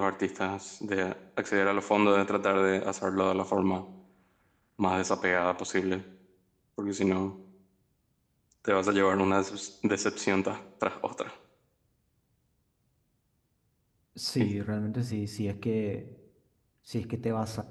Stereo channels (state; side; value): identical; both; correlation 1.00